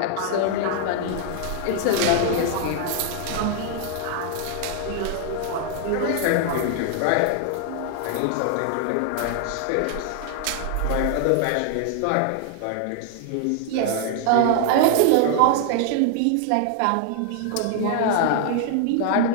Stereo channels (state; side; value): different; both; correlation 0.00